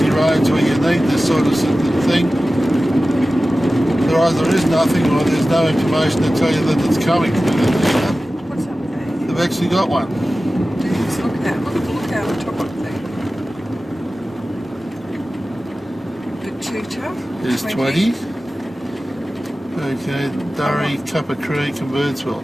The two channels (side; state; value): both; normal; correlation 0.95